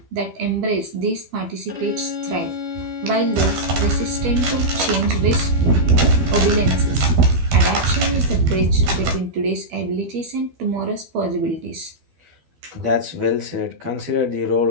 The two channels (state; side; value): late; left; 12 ms